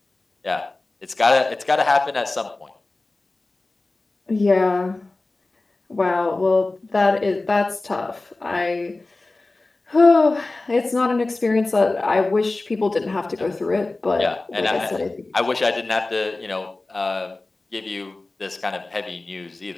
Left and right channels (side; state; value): right; quieter; 3.2 dB